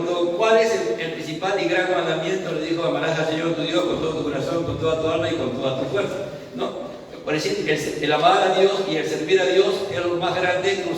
cuál es el principal y gran mandamiento, le dijo: amarás al Señor tu Dios con todo tu corazón, con toda tu alma y con toda tu fuerza, ¿no? Por decir, el amar a Dios y el servir a Dios es lo más grande que un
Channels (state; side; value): identical; both; correlation 1.00